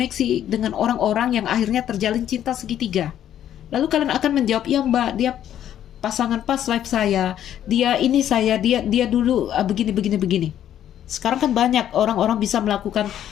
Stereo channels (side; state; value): right; quieter; 10.8 dB